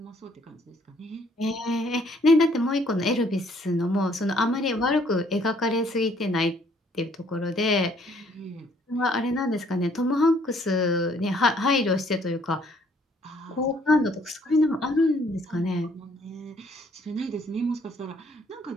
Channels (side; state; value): both; normal; correlation 0.63